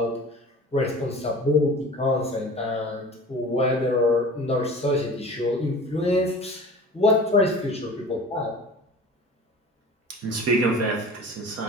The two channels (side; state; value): both; normal; correlation 0.40